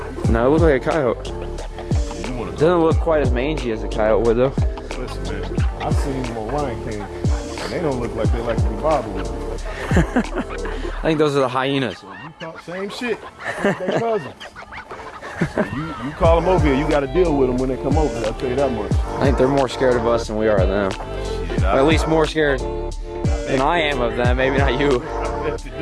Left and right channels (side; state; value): both; identical; correlation 1.00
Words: No, it looked like a coyote. You wanna Doesn't look quite as mangy as a coyote would though. Listen, man, I've seen them on Lion King, and they don't look like they like to be bothered with. I think those are the hyenas. So you talk same shit. I think they cousins. So you call them over here, you got to deal with them when they come over. I'll tell you that much. I think they're more scared of us than we are of them. Shit, Or at least more scared than I am of them. Maybe not you. I bet you